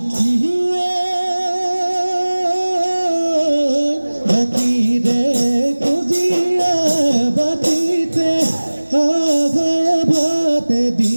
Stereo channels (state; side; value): inverted; both; correlation -1.00